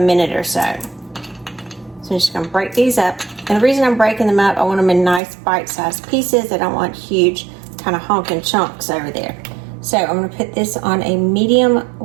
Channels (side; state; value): left; drops out; at 5.2 s